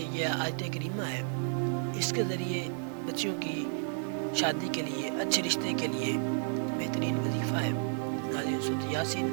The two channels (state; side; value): silent; left; 56 dB below the other